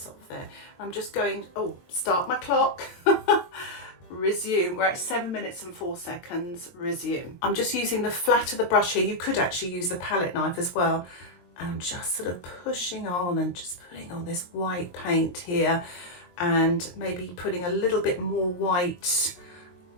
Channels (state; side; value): late; right; 22 ms